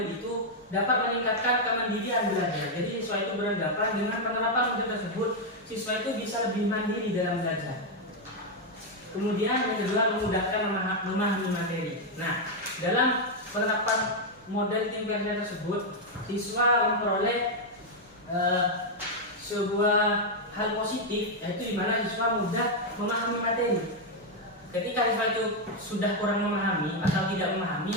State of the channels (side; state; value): both; normal; correlation 0.01